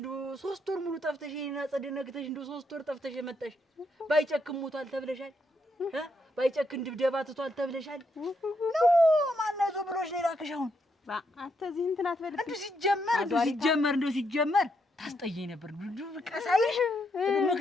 3 ወር ሙሉ ጠፍተሽ እኔን አጸደነግተሽ እንደው 3 ወር ጠፍተሽ የመጣሽ። ባይጨክም ሞቷል ተብለሻል። ባይጨክን ድብደባ ትቷል ተብለሻል። ነው ማን ያዞ ብሎሽ ነው የላከሽ? አሁን አንተ እዚህ እንትን አትበልብኝ። እንደው ሲጀመር ታስጠየኝ ነበር። ቀሳይሽ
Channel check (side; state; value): both; normal; correlation 0.78